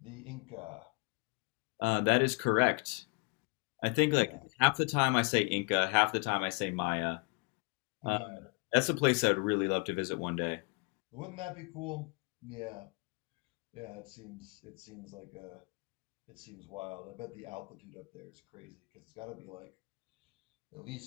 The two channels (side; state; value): right; quieter; 31.6 dB